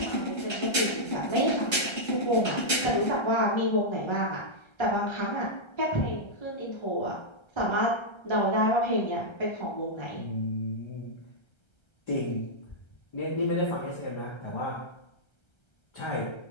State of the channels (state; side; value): late; right; 1.3 ms